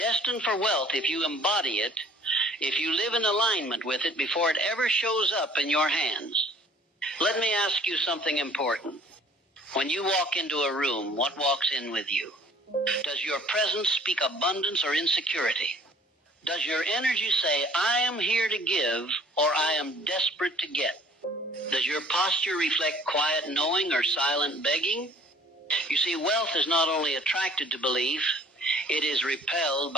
for wealth if you embody it, if you live in alignment with it before it ever shows up in your hands. Let me ask you something important. When you walk into a room, what walks in with you? Does your presence speak abundance or insecurity? Does your energy say, I am here to give, or I am desperate to get? Does your posture reflect quiet knowing or silent begging? You see, wealth is not only attracted to belief, it is repelled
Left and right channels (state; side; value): normal; both; correlation 0.54